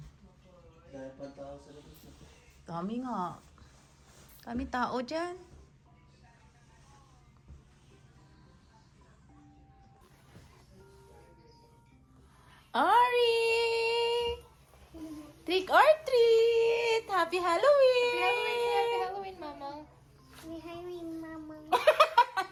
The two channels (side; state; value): both; identical; correlation 1.00